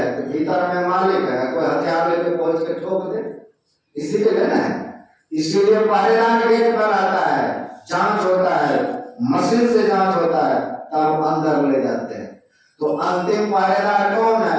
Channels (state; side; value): identical; both; correlation 1.00